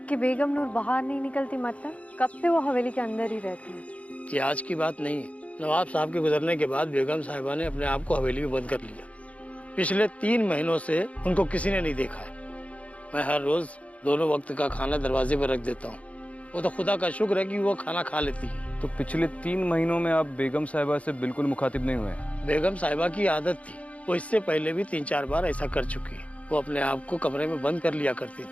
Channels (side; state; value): right; late; 0.065 ms